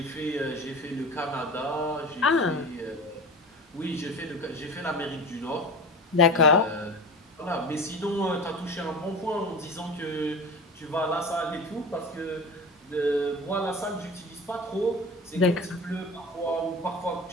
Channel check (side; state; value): both; normal; correlation 0.32